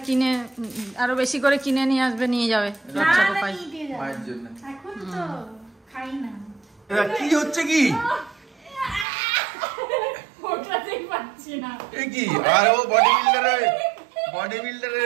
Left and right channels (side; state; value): left; drops out; at 9.1 s